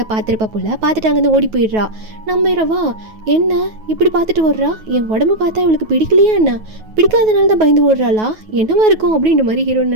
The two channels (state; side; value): late; left; 9.3 ms